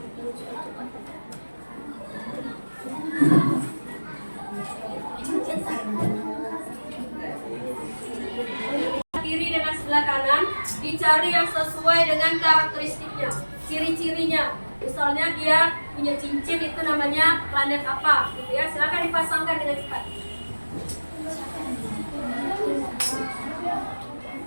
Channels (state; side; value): inverted; both; correlation -1.00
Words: Kiri dengan sebelah kanan, dicari yang sesuai dengan karakteristiknya, ciri-cirinya. Misalnya dia punya cincin, itu namanya planet apa, gitu ya. Silakan dipasangkan dengan cepat.